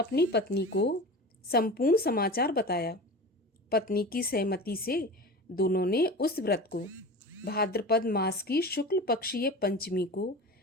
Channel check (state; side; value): normal; both; correlation 0.32